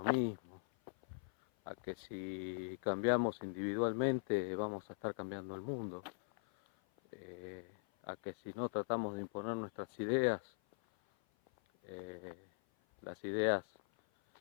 mismo, a que si cambiamos individualmente vamos a estar cambiando el mundo, a que si no tratamos de imponer nuestras ideas, eh, las ideas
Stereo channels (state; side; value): silent; right; 50 dB below the other